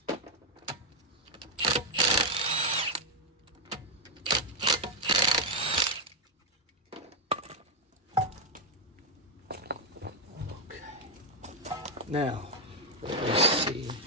Now, let's see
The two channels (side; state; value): both; normal; correlation 0.00